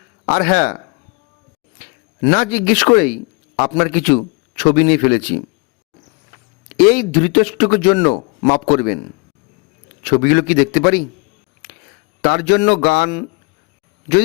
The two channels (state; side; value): quieter; right; 29.6 dB